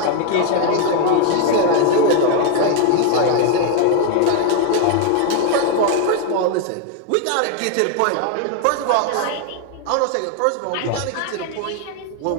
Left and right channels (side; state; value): both; different; correlation 0.00